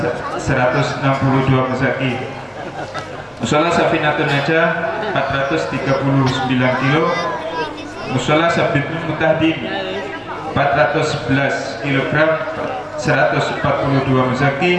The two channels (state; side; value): identical; both; correlation 1.00